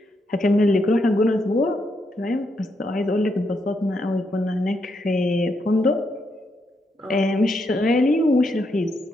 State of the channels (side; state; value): both; normal; correlation 0.79